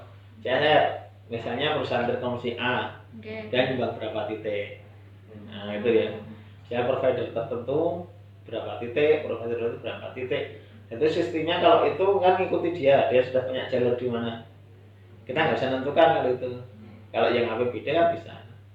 CSR. Misalnya perusahaan Telkomsel A dan nyumbang berapa titik. Nah itu ya. Saya provider tertentu berapa titik, provider itu berapa titik. Itu sistemnya kalau itu kan ngikuti dia sudah punya jalur di mana. Kita nggak bisa menentukan kalau itu. Kalau yang APBD kan bisa.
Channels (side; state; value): both; identical; correlation 1.00